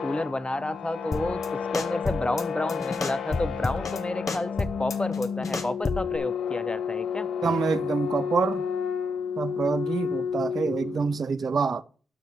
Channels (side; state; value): both; normal; correlation 0.82